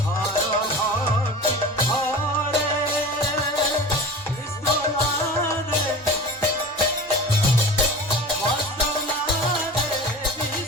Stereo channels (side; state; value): both; normal; correlation 0.36